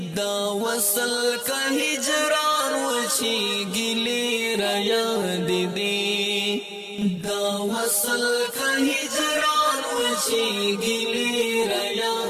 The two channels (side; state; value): both; identical; correlation 1.00